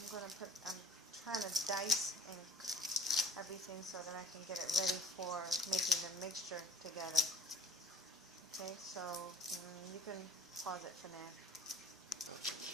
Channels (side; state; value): both; normal; correlation 0.49